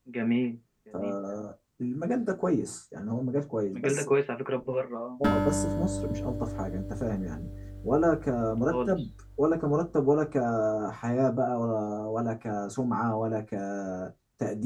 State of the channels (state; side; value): identical; both; correlation 1.00